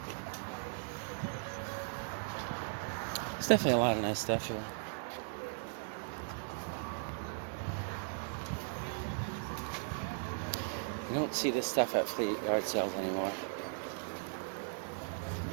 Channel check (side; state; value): left; silent; 53 dB below the other